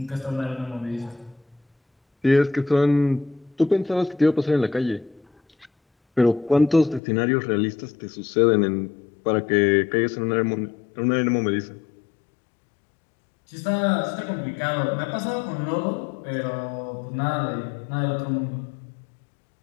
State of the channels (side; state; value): right; drops out; at 7.0 s